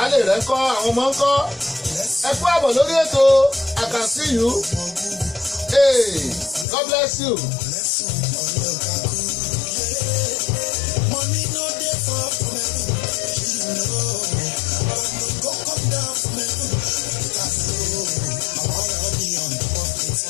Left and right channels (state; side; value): drops out; right; at 6.7 s